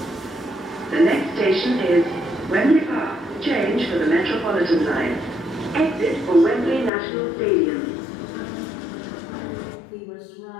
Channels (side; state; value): right; drops out; at 6.9 s